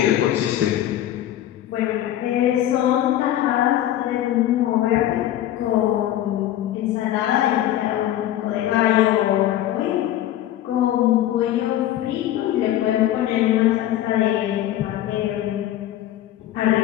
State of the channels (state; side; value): quieter; right; 12.8 dB